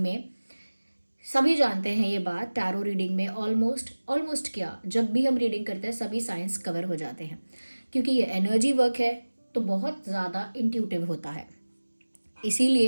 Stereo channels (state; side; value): inverted; both; correlation -1.00